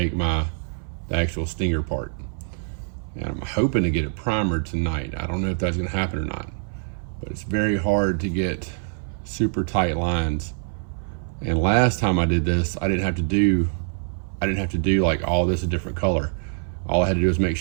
the actual stinger part. And I'm hoping to get it primered tonight. I don't know if that's gonna happen or not, but it's very hard to get super tight lines. And last time I did this, I didn't have to do like all this a different color. All I had to do was make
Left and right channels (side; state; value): left; silent; 58 dB below the other